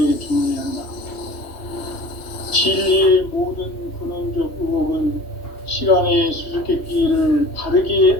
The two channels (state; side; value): late; right; 2.8 ms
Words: 준비한다. 진리의 모든 근원적 의혹은 시간의 수수께끼를 바르게